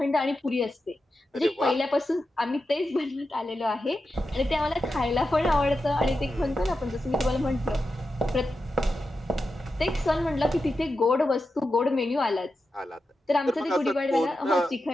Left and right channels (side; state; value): both; normal; correlation 0.90